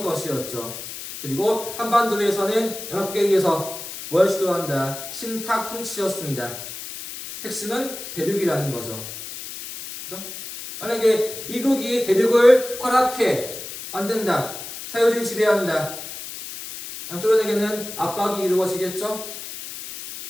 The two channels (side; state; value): left; noise; hiss, 10 dB below the sound